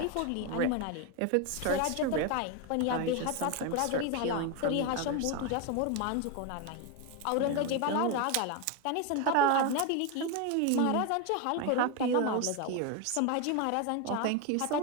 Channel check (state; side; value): different; both; correlation 0.02